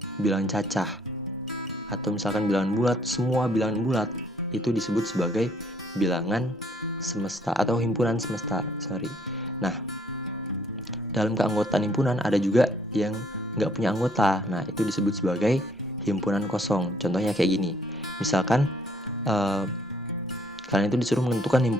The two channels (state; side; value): normal; both; correlation 0.64